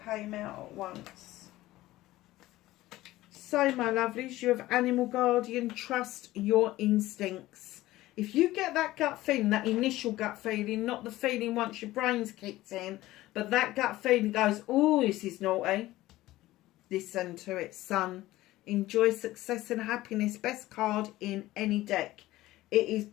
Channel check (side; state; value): right; quieter; 16.7 dB